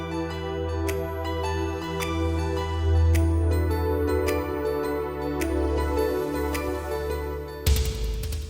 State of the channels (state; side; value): identical; both; correlation 1.00